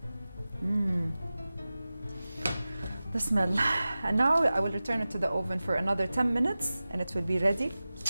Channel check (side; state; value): both; inverted; correlation -0.96